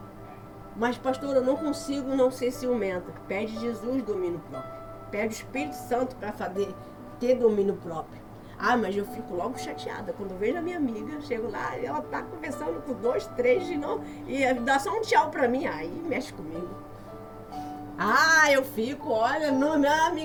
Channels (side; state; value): both; identical; correlation 1.00